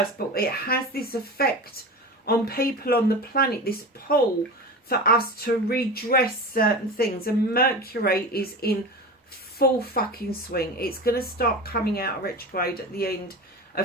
But it has this effect on people on the planet, this pull for us to redress certain things. And Mercury is in full fucking swing. It's going to start coming out of retrograde at the end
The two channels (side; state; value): both; normal; correlation 0.29